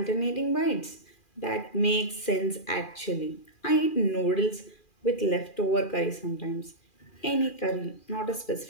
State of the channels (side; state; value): right; late; 2.4 ms